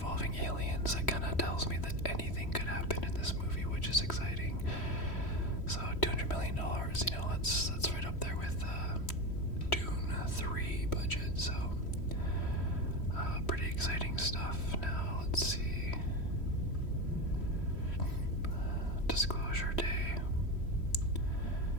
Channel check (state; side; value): late; right; 3.1 ms